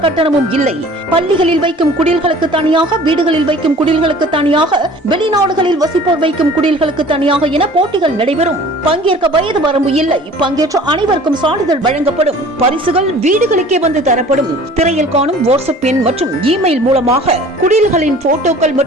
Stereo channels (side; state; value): both; normal; correlation 0.47